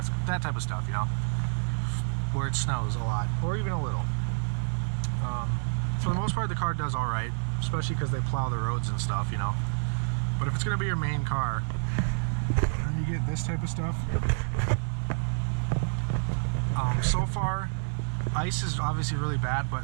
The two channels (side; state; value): left; silent; digital silence